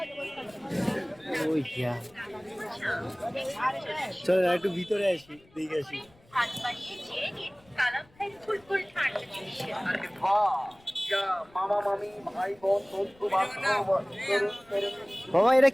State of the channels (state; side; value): noise; left; rumble, 29 dB below the sound